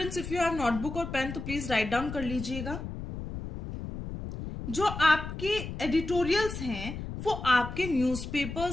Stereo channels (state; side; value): noise; left; rumble, 8 dB below the sound